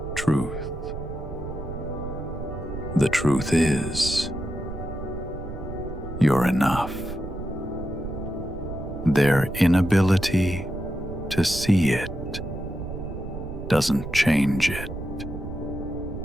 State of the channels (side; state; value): right; noise; rumble, 9 dB below the sound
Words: truth. The truth is, you're enough. Their inability to see it doesn't change it.